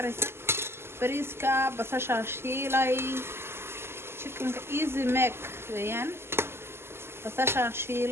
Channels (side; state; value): left; late; 0.12 ms